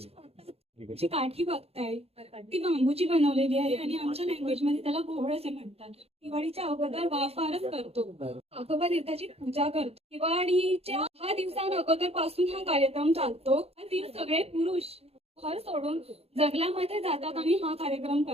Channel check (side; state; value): left; late; 0.29 ms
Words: जी काठी बघताय ती बांबूची बनवलेली आहे आणि आमच्या लँग्वेज मध्ये त्याला घोळ असे म्हणतात. दिवाळीच्या अगोदर वाफारच करतो. आगोबा देवताची पूजा करतो. दिवाळीच्या 6 दिवसां अगोदर पासून हा कार्यक्रम चालतो. ती सगळे पुरुष घर सोडून जंगलामध्ये जातात आणि हा कार्यक्रम